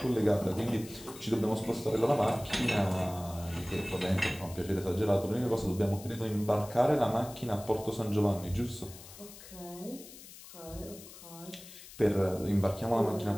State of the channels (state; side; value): noise; left; hiss, 17 dB below the sound